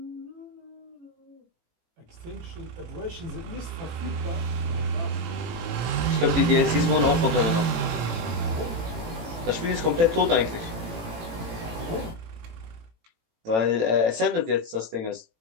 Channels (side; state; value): left; late; 18 ms